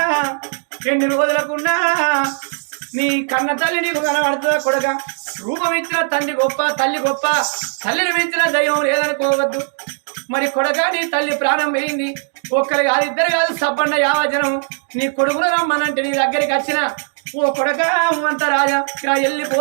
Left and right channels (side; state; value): left; silent; digital silence